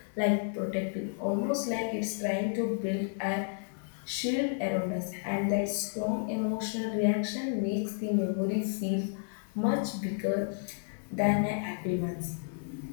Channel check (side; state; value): right; silent; digital silence